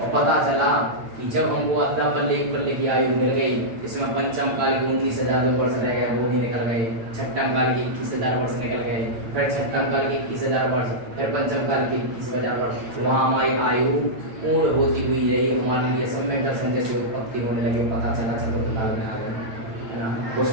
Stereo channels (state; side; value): late; left; 8.9 ms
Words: पता चला कि जब हमको अद्दा पल्ले एक पल्ले की आयु मिल गई, इसमें पंचम काल के 19,000 वर्ष रह गए, वो भी निकल गए, छठम काल के 21,000 वर्ष निकल गए, फिर छठम काल के 21,000 वर्ष, फिर पंचम काल के 21,000 वर्ष, वहाँ हमारी आयु पूर्ण होती हुई रही, हमारे लिए सम्यक दर्शन जैसे उत्पत्ति होने लगे, पता चला चतुर्थ काल में आ गए, है ना,